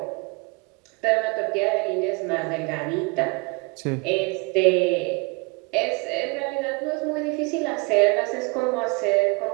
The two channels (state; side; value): quieter; left; 29.2 dB